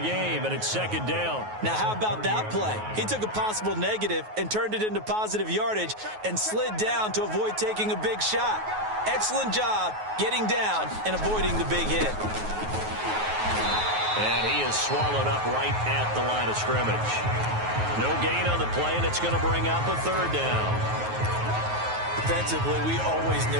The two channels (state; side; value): late; left; 9.4 ms